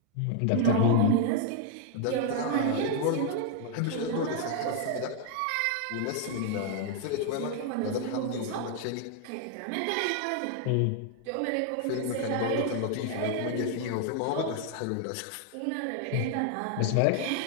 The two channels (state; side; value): different; both; correlation 0.00